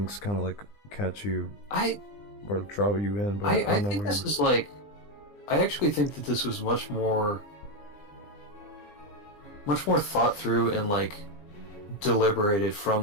kind of like catch you or draw you in. But I don't know. Think this is like, I actually think that this was much more thought through and like deliberated from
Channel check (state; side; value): late; right; 20 ms